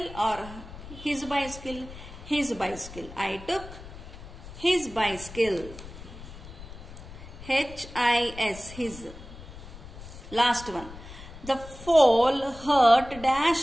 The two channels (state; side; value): noise; left; rumble, 15 dB below the sound